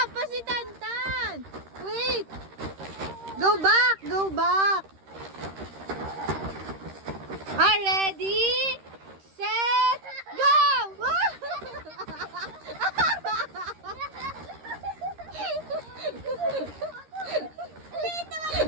pa si Tantan. Wait. Go back. Ah, ready? Set. Go!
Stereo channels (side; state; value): left; late; 13 ms